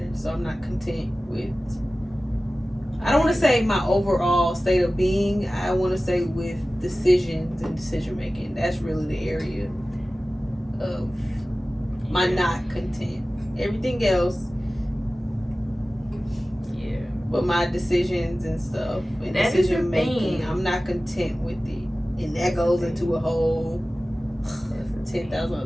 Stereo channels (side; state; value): both; normal; correlation 0.96